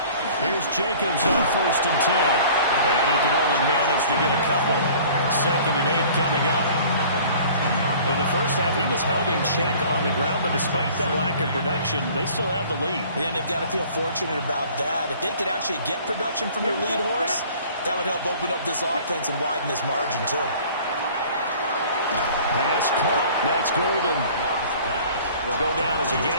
Here's Jacobs on 1st and 10. And he can only manage to get a couple. 2nd and 8 coming up. In the first half, he was held in check on the ground, but despite that lack of production, they still have the lead. Yeah, and they've got to feel fortunate about that. If they could actually get production from their lead horse, that would help open up this offense and widen this margin, too. Pass caught. That's Golden. Will go down as a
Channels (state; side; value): inverted; both; correlation -0.49